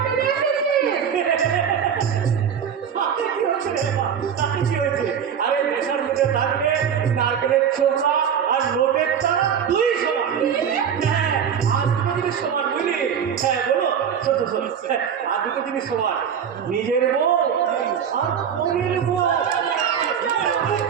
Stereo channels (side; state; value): left; quieter; 7.9 dB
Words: আরে নেশার মধ্যে থাকলে নারকেলের ছোকরা আর নোটের তারা দুই সমান। হ্যাঁ, আর দুটো জিনিস সমান, বুঝলি? হ্যাঁ বলো, আর দুটো জিনিস সমান, নিজের বউ আর অন্যের বউ।